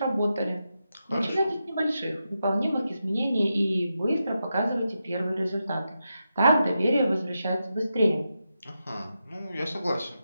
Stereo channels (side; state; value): both; inverted; correlation -0.88